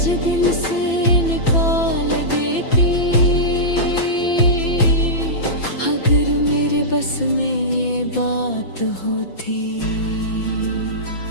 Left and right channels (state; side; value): late; right; 5.9 ms